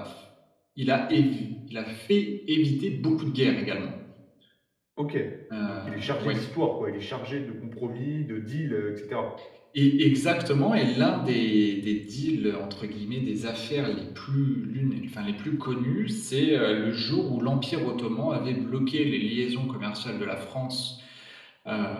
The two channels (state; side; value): identical; both; correlation 1.00